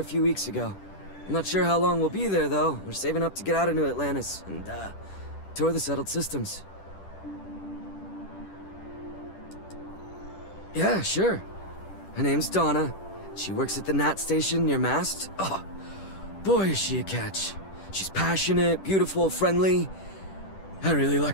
few weeks ago. I'm not sure how long we'll be there, though. We're saving up to get out of New Atlantis and, tour the settled systems. Yeah, sure. Her name's Donna. She works at the Nat station near Mast. Oh, boy, is she a catch. She's passionate, beautiful, friendly. I really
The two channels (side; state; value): right; late; 10 ms